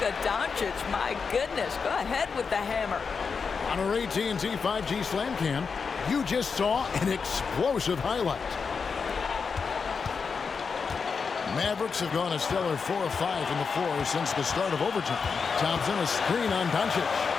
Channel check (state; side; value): quieter; right; 5.5 dB